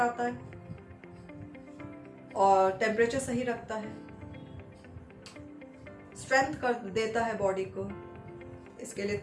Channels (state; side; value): identical; both; correlation 1.00